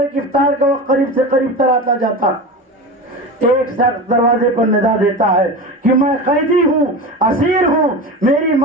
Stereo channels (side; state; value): both; normal; correlation 0.27